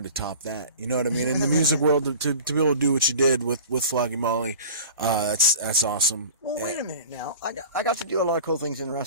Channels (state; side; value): inverted; both; correlation -0.40